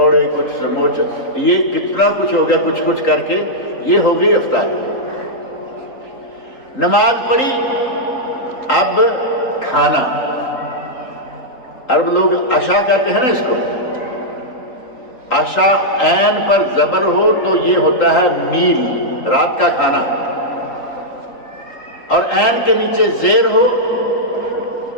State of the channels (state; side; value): late; right; 3.8 ms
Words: کچھ سموسے، یہ کتنا کچھ ہو گیا، کچھ کر کے یہ ہو گئی افطاری۔ نماز پڑھی، اب کھانا، عرب لوگ عشاء کہتے ہیں نا اس کو، عشاء عین پر زبر ہو تو یہ ہوتا ہے میل، رات کا کھانا، اور عین کے نیچے زیر ہو